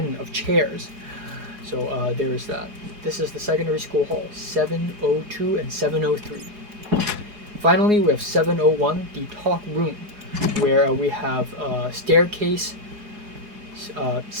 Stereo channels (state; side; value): late; left; 4.8 ms